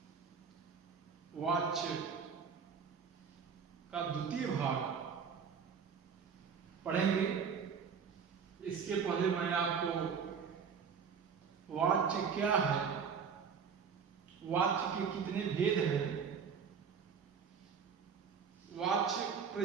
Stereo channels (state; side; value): quieter; left; 6.5 dB